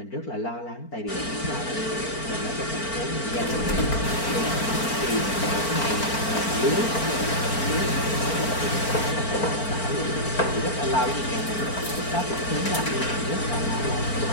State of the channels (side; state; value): right; late; 4.4 ms